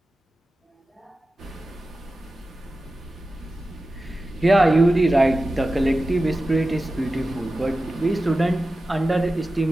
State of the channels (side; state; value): both; normal; correlation 0.94